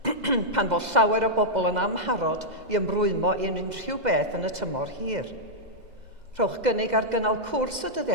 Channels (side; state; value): left; late; 2.0 ms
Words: pan fod llawer o bobl yn amharod i ymrwymo i unrhyw beth yn y tymor hir. Rhowch gynnig ar gynnal cwrs y